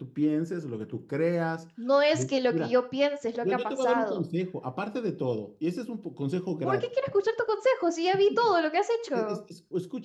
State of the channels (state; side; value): identical; both; correlation 1.00